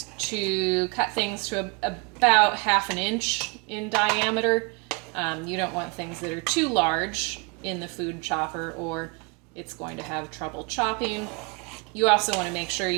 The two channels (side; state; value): left; quieter; 30.2 dB